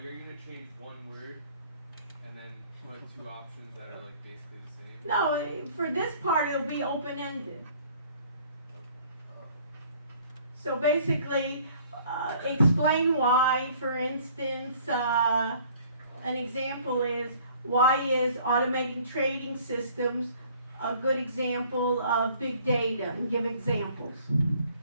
are you gonna change one word and then put two options that are like basically the same? No, for this part it'll be open-ended. So basically, explain why, for instance, an example is, why is automating trading systems a good example of big data? And give examples.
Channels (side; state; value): both; inverted; correlation -0.56